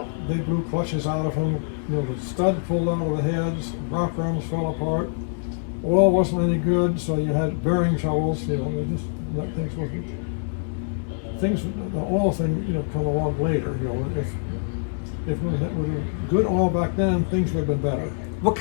They blew clutches out of them. The stud pulled out of the heads. Rock arms fell apart. Oil wasn't any good, so you had bearing troubles. The oil thing, come along later. If we had good oil back then, things would have been better. What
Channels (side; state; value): right; silent; digital silence